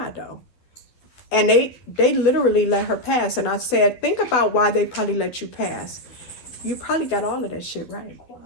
though. And they literally let her pass. And I said, think about why they probably let you pass. You probably got all of that shit right.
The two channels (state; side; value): late; right; 12 ms